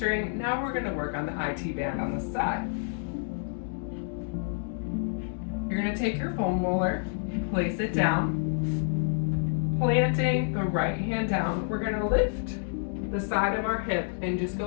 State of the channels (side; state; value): right; silent; digital silence